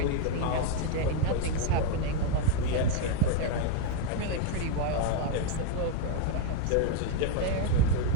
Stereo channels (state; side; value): different; both; correlation 0.00